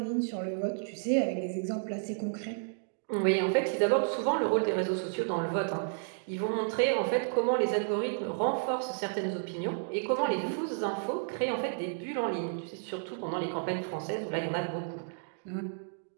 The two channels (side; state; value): left; silent; digital silence